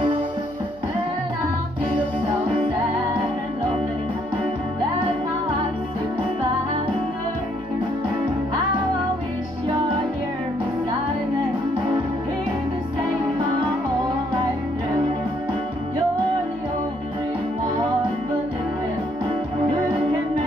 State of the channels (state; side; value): noise; left; hum, 24 dB below the sound